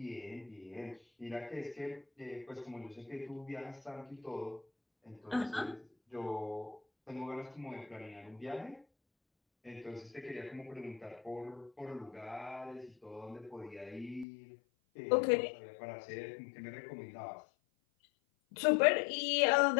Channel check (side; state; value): right; drops out; at 14.2 s